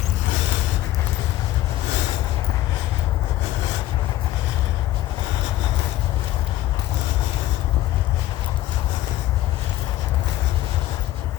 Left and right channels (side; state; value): right; quieter; 14.8 dB